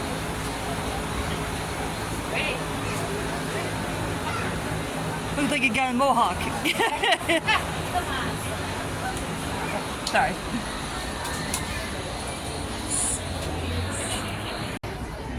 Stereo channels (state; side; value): identical; both; correlation 1.00